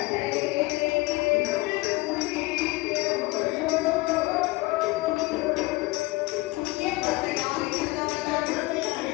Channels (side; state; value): right; quieter; 22.1 dB